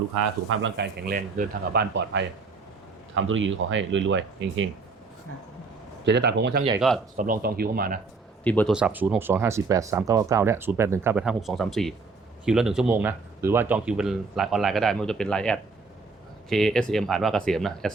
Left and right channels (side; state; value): left; quieter; 4.2 dB